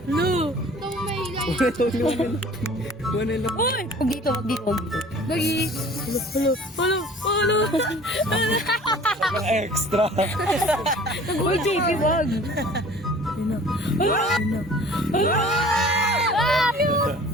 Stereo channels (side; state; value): both; normal; correlation 0.47